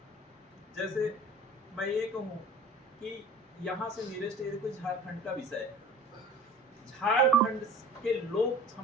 जैसे मैं ये कहूँ कि यहाँ से नियरेस्ट एरिया कोई झारखंड का विषय है। झारखंड के लोग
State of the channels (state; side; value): normal; both; correlation 0.44